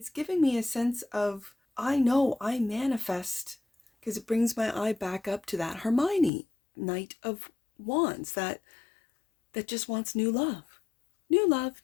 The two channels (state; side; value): drops out; right; at 6.3 s